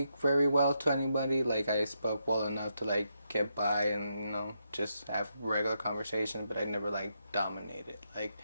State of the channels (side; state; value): both; inverted; correlation -0.81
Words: very well to anybody. Like I spoke well enough to like get by and just have regular conversation, but I never like dominated like